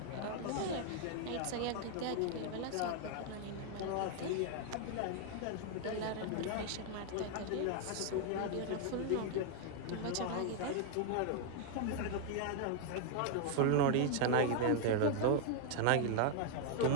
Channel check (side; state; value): both; different; correlation 0.00